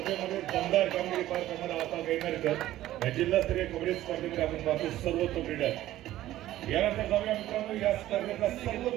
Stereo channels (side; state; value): left; quieter; 14.4 dB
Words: दमदार कामगिरी पार करणारा आपा गायनरकर या जिल्हास्तरीय कबड्डी स्पर्धेमध्ये आपण पाहतो सर्वोत्तम रीडर. यानंतर जाऊया मित्रांनो या स्पर्धेचा